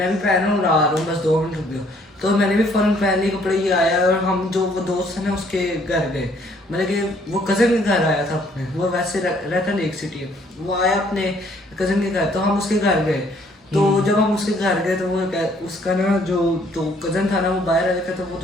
भी पहन रहा हूँ, आ रहा हूँ, बस 2 मिनट रुक जाओ। तो मैंने भी फ़ौरन पहन लिए कपड़े, ये आया और हम जो वो दोस्त है ना उसके घर गए, मतलब कि वो कज़न के घर आया था अपने, वो वैसे रहता लेक सिटी है, वो आया अपने कज़न के घर, तो हम उसके घर गए। तो जब हम उसके घर गए तो वो उसका ना जो तो कज़न था ना वो बाहर आ रखा था, वो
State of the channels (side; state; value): both; normal; correlation 0.63